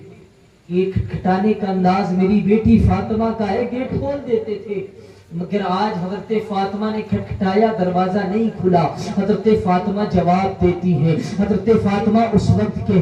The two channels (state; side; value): identical; both; correlation 1.00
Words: یہ کھٹکھٹانے کا انداز میری بیٹی فاطمہ کا ہے, گیٹ کھول دیتے تھے. مگر آج حضرت فاطمہ نے کھٹکھٹایا, دروازہ نہیں کھلا. حضرت فاطمہ جواب دیتی ہے. حضرت فاطمہ اس وقت